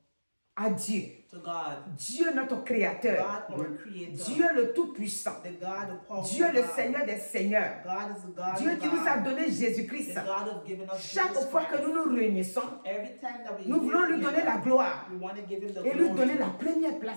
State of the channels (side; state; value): both; inverted; correlation -1.00